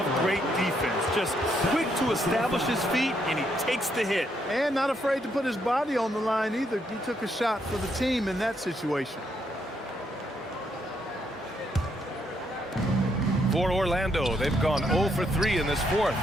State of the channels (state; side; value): normal; both; correlation 0.75